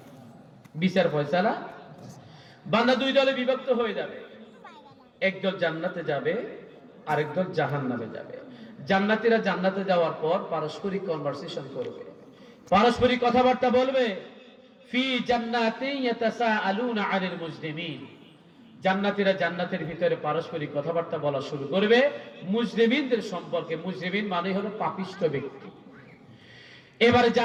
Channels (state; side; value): identical; both; correlation 1.00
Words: বিচার ফয়সালা। বান্দা 2 দলে বিভক্ত হয়ে যাবে, একদল জান্নাতে যাবে, আরেক দল জাহান্নামে যাবে। জান্নাতীরা জান্নাতে যাওয়ার পর পারস্পরিক কনভারসেশন করবে, পারস্পরিক কথাবার্তা বলবে। ফি জান্নাতিন ইয়াতাসাআলুনা আনিল মুজরিমিন, জান্নাতীরা জান্নাতের ভিতরে পারস্পরিক কথাবার্তা বলা শুরু করবে মুজরিমিনদের সম্পর্কে। মুজরিমিন মানে হলো পাপিষ্ঠ ব্যক্তি। এবারে